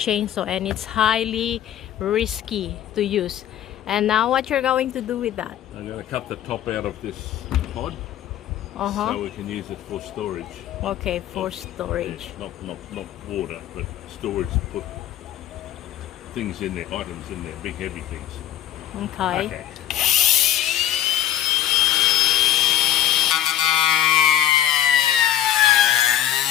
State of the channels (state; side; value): quieter; right; 11.5 dB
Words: and it's highly risky to use. And now what you're going to do with that? I'm going to cut the top out of this pod so we can use it for storage. Okay, for storage. Yeah, not water, but storage to put things in there, items in there, big heavy things. Okay.